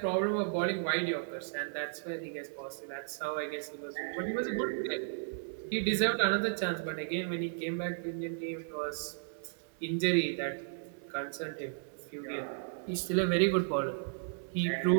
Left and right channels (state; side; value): silent; left; 55 dB below the other